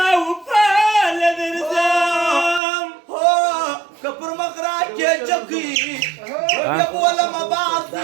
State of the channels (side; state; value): left; drops out; at 2.6 s